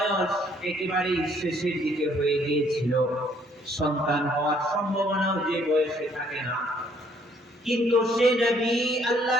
একেবারে শেষের দিকে হয়ে গিয়েছিল, সন্তান হওয়ার সম্ভাবনাও যে বয়সে থাকে না, কিন্তু সে নবী আল্লাহ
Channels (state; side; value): normal; both; correlation 0.65